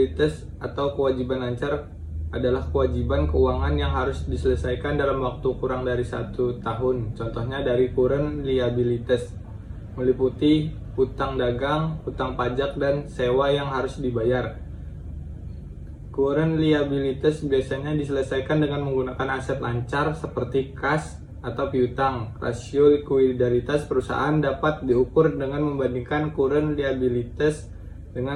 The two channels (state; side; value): identical; both; correlation 1.00